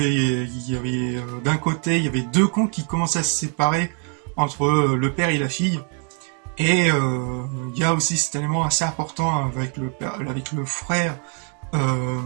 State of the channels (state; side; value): quieter; left; 36.2 dB